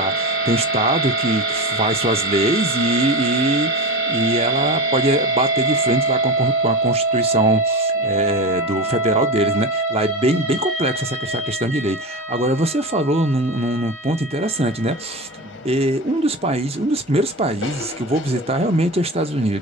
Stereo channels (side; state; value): both; normal; correlation 0.24